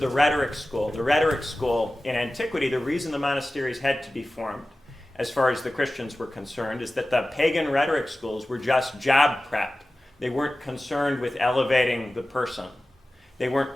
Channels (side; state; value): both; normal; correlation 0.96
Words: rhetoric school. The rhetoric school in antiquity, the reason the monasteries had to be formed, as far as the Christians were concerned, is that the pagan rhetoric schools were just job prep. They weren't concerned with elevating the person. They